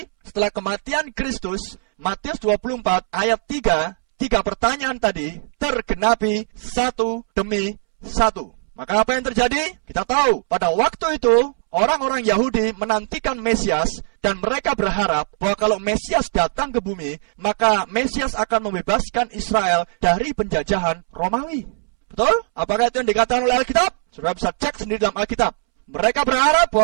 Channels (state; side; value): silent; left; 65 dB below the other